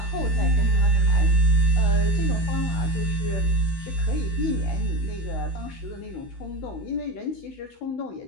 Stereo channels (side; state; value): right; late; 13 ms